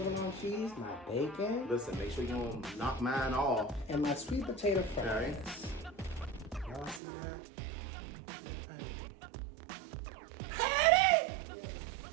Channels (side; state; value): left; drops out; at 7.0 s